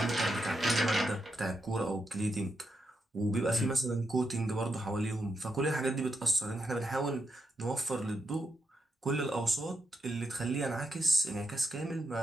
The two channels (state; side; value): normal; both; correlation 0.84